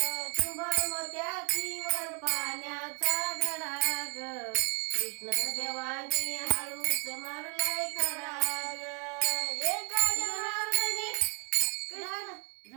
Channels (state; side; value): quieter; left; 33.8 dB